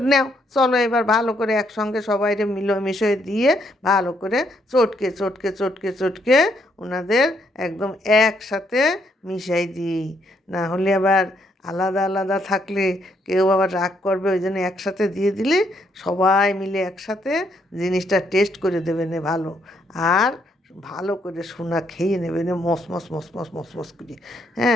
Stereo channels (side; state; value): both; normal; correlation 0.73